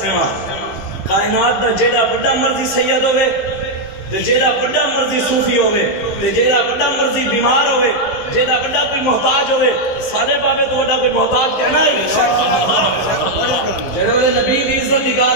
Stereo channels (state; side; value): late; right; 15 ms